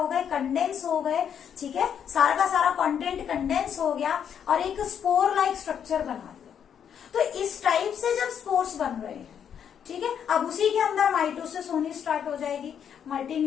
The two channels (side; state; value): right; quieter; 8.3 dB